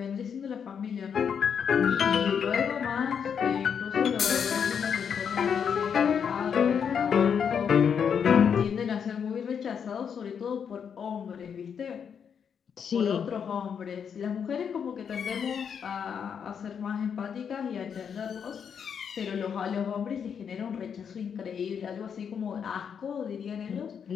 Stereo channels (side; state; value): right; quieter; 7.3 dB